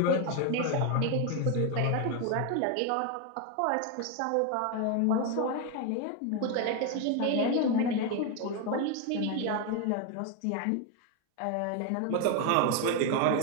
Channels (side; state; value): both; different; correlation 0.01